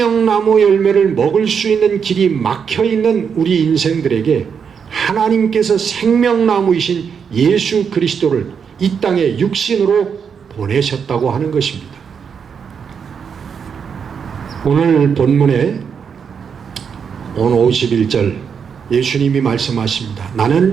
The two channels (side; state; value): left; quieter; 6.7 dB